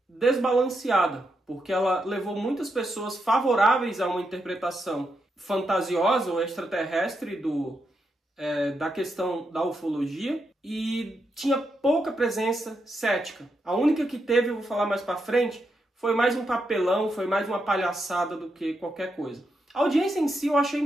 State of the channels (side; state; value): both; normal; correlation 0.83